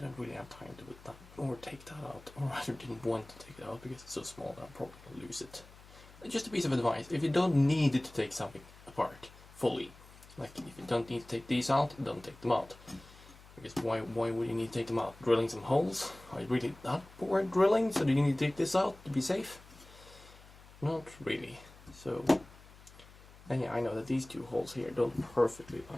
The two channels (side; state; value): left; noise; hum, 21 dB below the sound